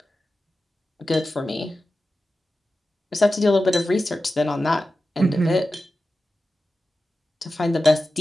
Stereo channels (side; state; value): both; normal; correlation 0.93